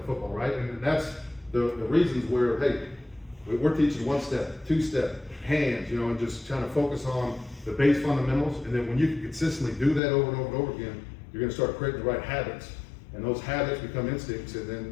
football, right? And that's the reasons where, hey, we're teaching 1 step, 2 step, hands, you know, and just trying to focus on the base fundamentals. And then when you can consistently do that over and over and over again, you're gonna start creating the right habits. And those habits become instincts, and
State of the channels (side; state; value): right; drops out; at 10.0 s